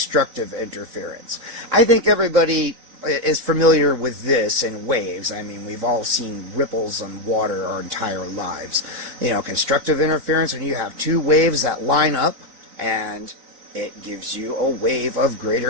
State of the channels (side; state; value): left; late; 3.9 ms